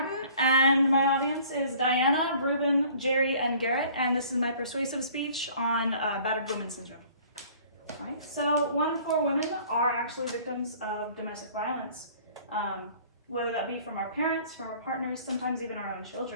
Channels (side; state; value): both; inverted; correlation -0.52